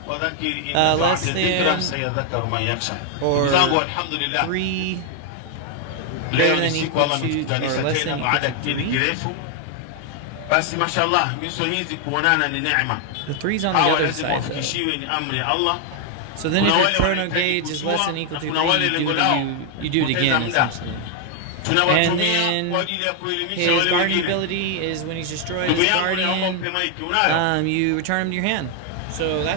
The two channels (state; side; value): different; both; correlation 0.00